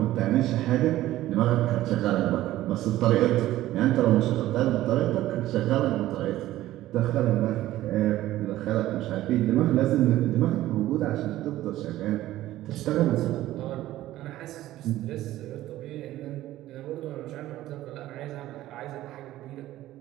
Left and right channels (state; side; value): quieter; left; 14.9 dB